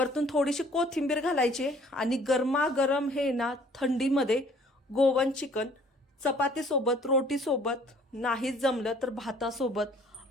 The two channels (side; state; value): both; normal; correlation 0.56